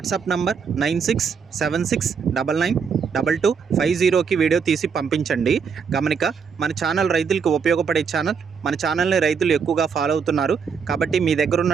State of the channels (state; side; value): quieter; left; 6.1 dB